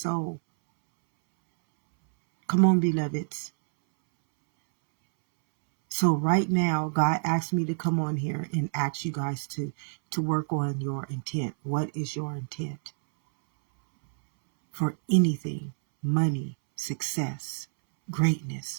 Come on, beloveds. So right now, God asked me to come on here and ask you guys to work on your intent. What is your intent? For anything, money, success,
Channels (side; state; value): left; silent; 60 dB below the other